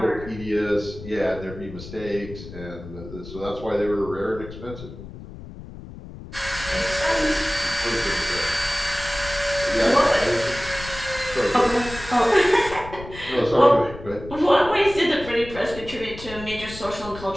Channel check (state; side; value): noise; left; rumble, 14 dB below the sound